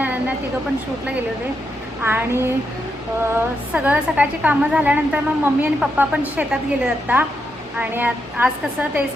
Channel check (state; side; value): normal; both; correlation 0.82